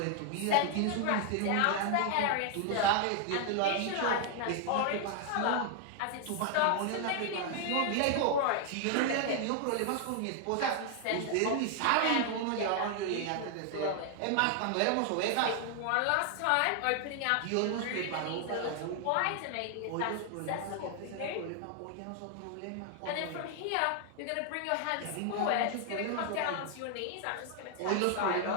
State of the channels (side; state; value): both; different; correlation 0.00